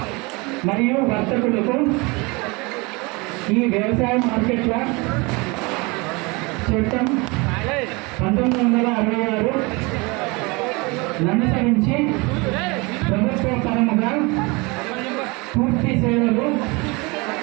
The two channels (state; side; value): quieter; left; 26.4 dB